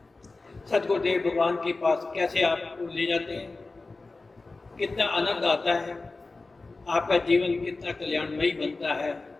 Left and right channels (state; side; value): quieter; right; 3.5 dB